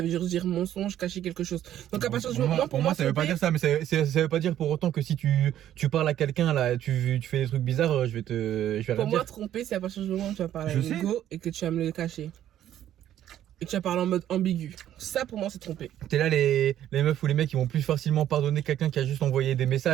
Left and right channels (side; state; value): left; quieter; 11.6 dB